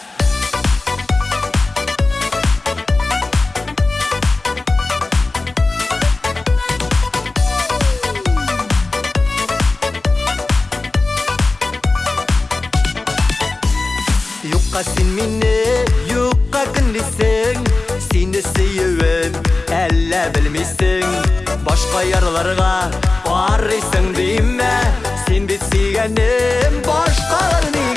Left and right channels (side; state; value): right; quieter; 3.4 dB